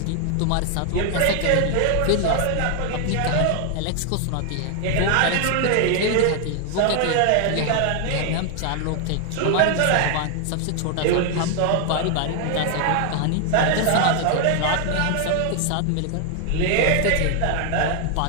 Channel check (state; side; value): different; both; correlation 0.00